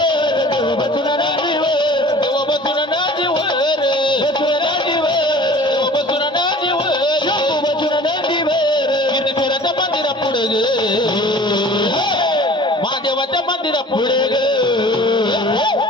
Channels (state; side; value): normal; both; correlation 0.45